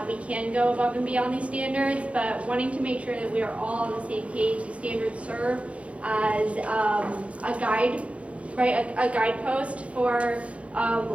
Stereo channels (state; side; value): late; left; 0.063 ms